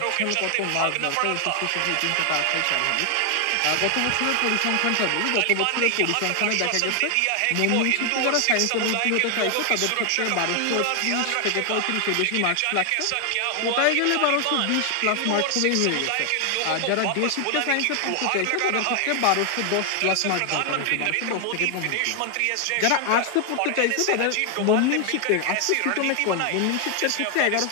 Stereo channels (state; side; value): different; both; correlation 0.00